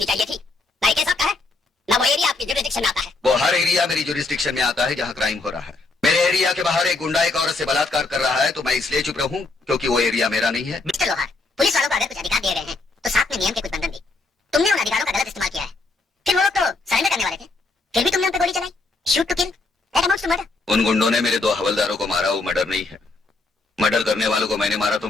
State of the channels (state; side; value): quieter; right; 3.5 dB